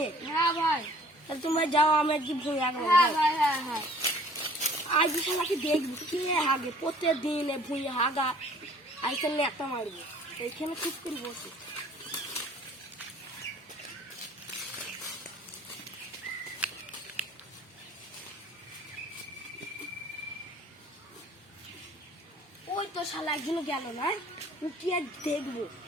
হ্যাঁ ভাই। তাহলে তোমরা যাও, আমি একদিন ভুল হ্যাঁ ভাই, হ্যাঁ হ্যাঁ। আজ শালাকে দেখবো কে হাগে, প্রত্যেকদিন ভুঁয়ে হাগা আইসেন একটা মারবো। এইখানে চুপ করে বসে ওই তো শালা একদিনও গেল না, উঠিয়ে দেখবো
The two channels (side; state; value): both; normal; correlation 0.53